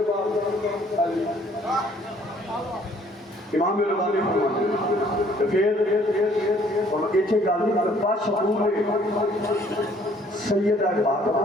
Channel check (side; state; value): both; normal; correlation 0.60